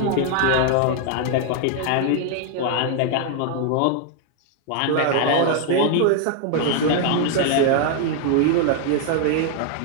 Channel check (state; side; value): different; both; correlation 0.00